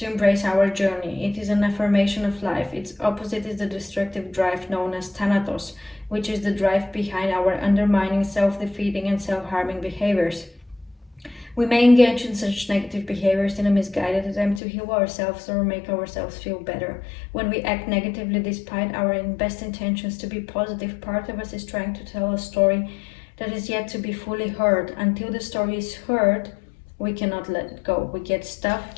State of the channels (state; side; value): drops out; right; at 14.6 s